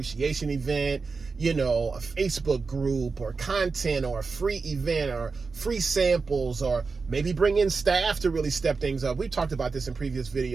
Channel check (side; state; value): left; quieter; 4.5 dB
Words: event, you know, a Facebook group or content or a free event or free samples, or maybe bring in staff to really step things up. We talked about this in previous